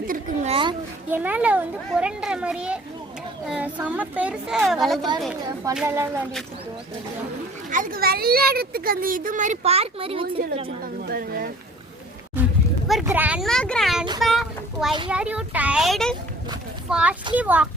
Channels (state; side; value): normal; both; correlation 0.50